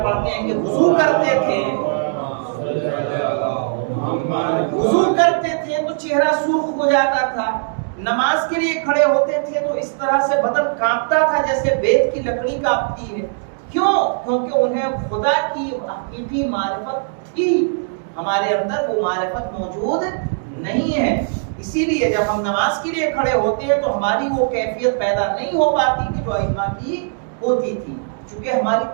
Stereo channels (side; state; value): left; silent; digital silence